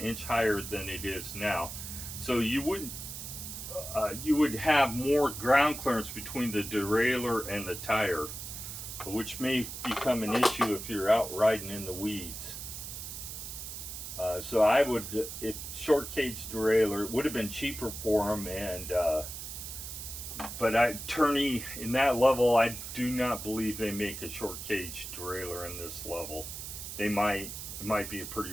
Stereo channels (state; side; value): noise; right; hiss, 8 dB below the sound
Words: higher than it is now. So you would have more ground clearance between the derailleur and the tire, which may become an issue if you're out riding in the weeds. So I would, if short cage derailleur, it would have been cheaper for them, and but Turney in that level, I do not believe they make a short cage derailleur in this level. They might. It might be a pretty